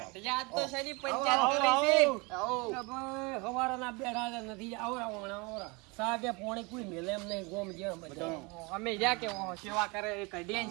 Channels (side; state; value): left; quieter; 27.8 dB